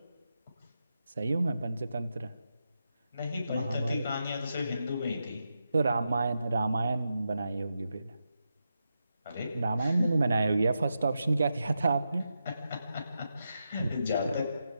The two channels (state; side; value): inverted; both; correlation -0.87